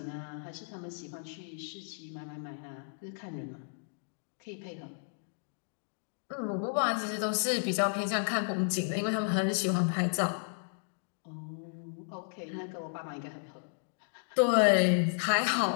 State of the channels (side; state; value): right; silent; digital silence